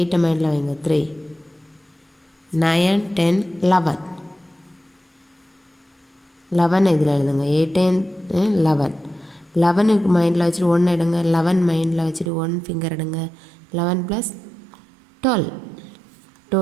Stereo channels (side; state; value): left; drops out; at 12.3 s